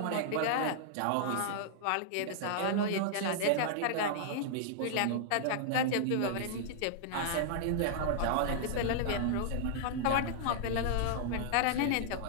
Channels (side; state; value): both; different; correlation -0.01